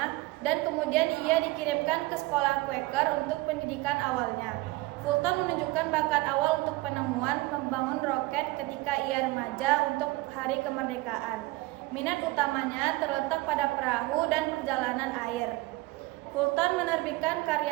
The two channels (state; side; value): quieter; left; 20.8 dB